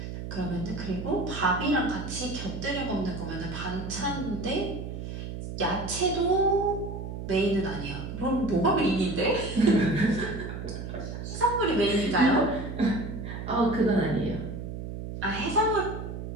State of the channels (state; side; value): noise; right; hum, 7 dB below the sound